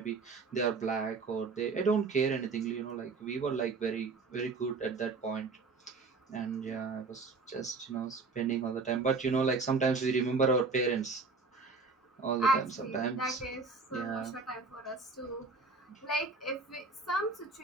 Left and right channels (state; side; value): quieter; left; 4.2 dB